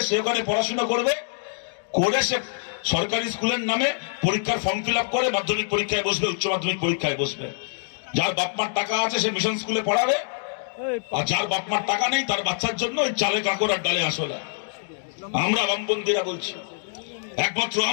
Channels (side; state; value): right; silent; digital silence